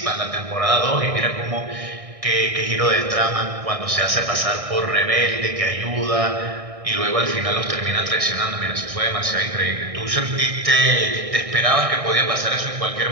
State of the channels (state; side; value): late; left; 1.6 ms